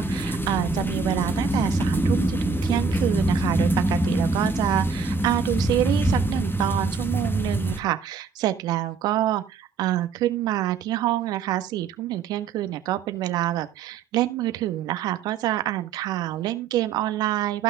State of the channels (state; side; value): quieter; left; 5.7 dB